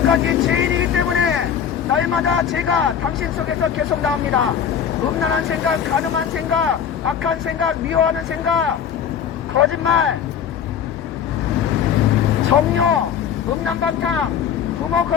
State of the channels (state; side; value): quieter; right; 8.2 dB